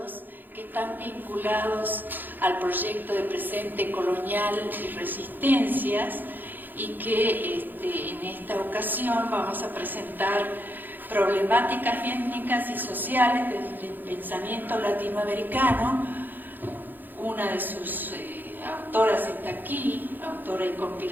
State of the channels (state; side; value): late; left; 0.089 ms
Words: que están vinculados al proyecto de Presente Colonial y Resistencias, y que en esta ocasión vamos a presentar problemáticas étnicas y sociales desde el pensamiento latinoamericano. Una de sus autoras está aquí, autora y